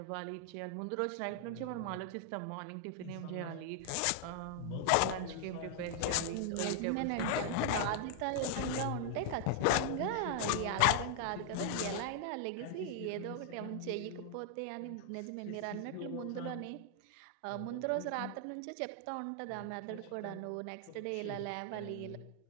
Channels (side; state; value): both; different; correlation 0.00